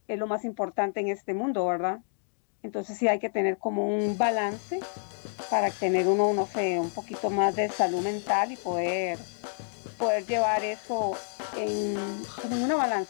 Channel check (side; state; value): right; silent; digital silence